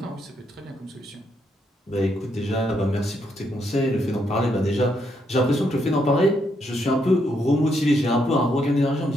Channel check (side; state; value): both; normal; correlation 0.77